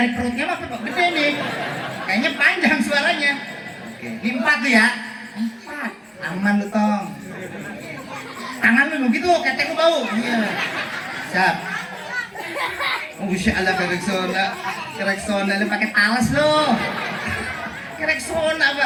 perutnya mah gede nih. Kayaknya panjang suaranya. Oke. Ini 4 tuh ya. 4. Aman lu tong. Tangan lu begitu. Ketek lu bau. Iya. Siap. Oh, Masya Allah kereksona lu pakai talas lu. Kerek sona,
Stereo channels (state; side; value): identical; both; correlation 1.00